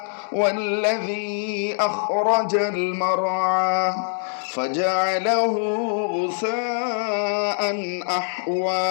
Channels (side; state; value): right; silent; digital silence